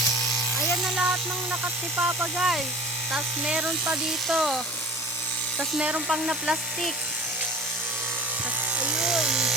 Ayan na lahat ng nakat ni Papa guys. Tapos meron pa dito. Tapos meron pang na plastic. Tapos ayun.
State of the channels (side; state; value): both; normal; correlation 0.42